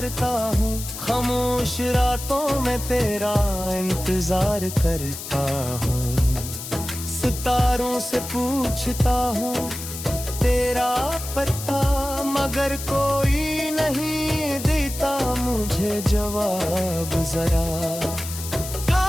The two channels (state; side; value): noise; left; hiss, 9 dB below the sound